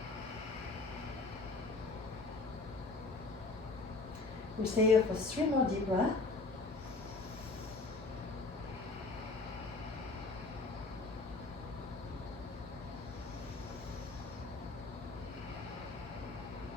We'll stay here for 3 more deep breaths.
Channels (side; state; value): right; quieter; 3.5 dB